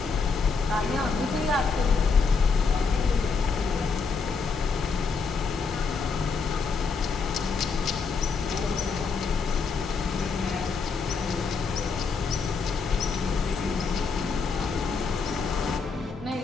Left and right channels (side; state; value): right; quieter; 4.9 dB